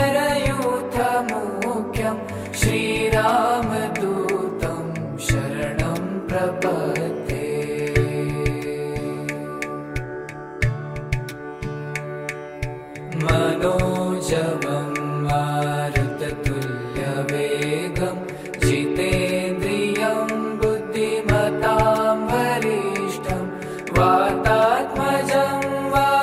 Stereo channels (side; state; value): both; identical; correlation 1.00